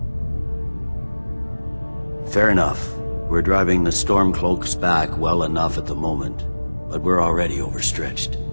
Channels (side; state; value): both; inverted; correlation -1.00